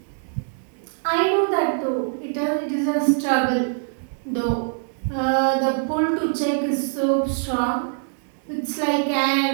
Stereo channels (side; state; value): left; silent; 63 dB below the other